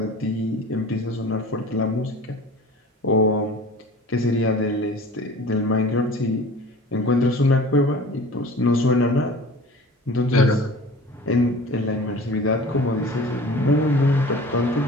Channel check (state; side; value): normal; both; correlation 0.41